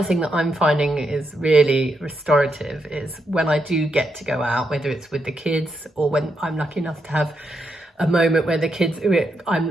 thing that I'm finding is really restorative is when I do get to go out, whether it's with the kids or when I'm lucky enough to have a moment where the kids,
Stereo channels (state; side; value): normal; both; correlation 0.82